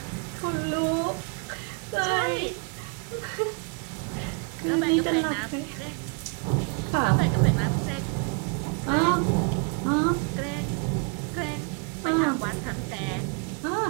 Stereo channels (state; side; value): quieter; left; 35.6 dB